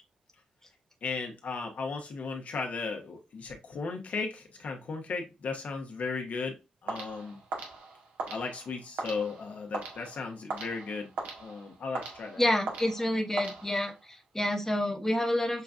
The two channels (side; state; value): both; normal; correlation 0.85